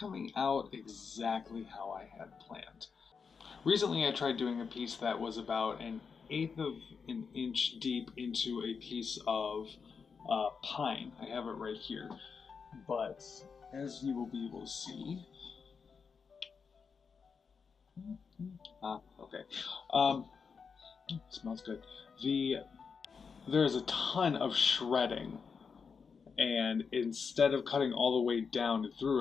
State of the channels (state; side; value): quieter; right; 5.7 dB